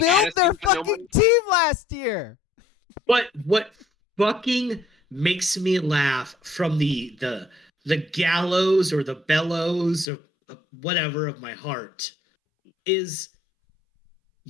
their fucking team last year? But what fucking makes me laugh from the gallows or the bellows or whatever of my heart is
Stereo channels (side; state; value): right; drops out; at 10.1 s